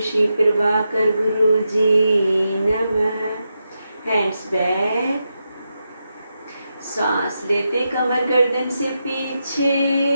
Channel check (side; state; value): both; inverted; correlation -0.86